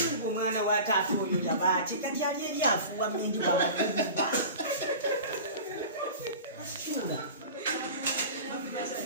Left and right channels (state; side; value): inverted; both; correlation -0.36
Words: omwana wa taata oyo yabaati kati ali ebyafuuwa mmindi wabakuba masitula